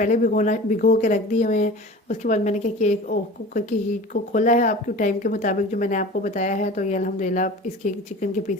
भिगो के रख दिए हुए हैं। उसके बाद मैंने क्या किया, एक कुकर की हीट को खोला है आपके टाइम के मुताबिक जो मैंने आपको बताया है। तो ये अल्हम्दुलिल्लाह इसके चिकन के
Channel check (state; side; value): normal; both; correlation 0.37